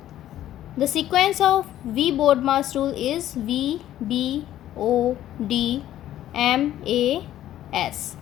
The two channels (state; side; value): quieter; right; 12.7 dB